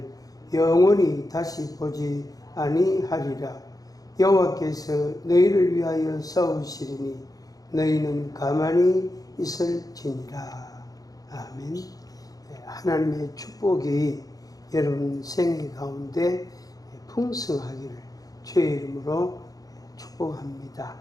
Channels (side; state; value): right; late; 0.18 ms